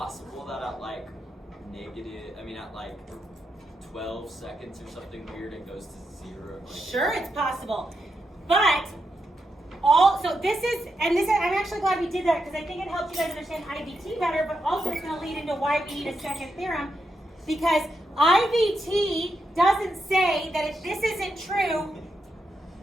that at like at like 12 seconds or something weird it goes to 0? Like, Sure, it's possible. But I'm actually glad we did that because I think it helps you guys understand IVT better, but also it's going to lead into why we need a second theorem, because IVT doesn't say that if this isn't true,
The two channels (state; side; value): normal; both; correlation 0.84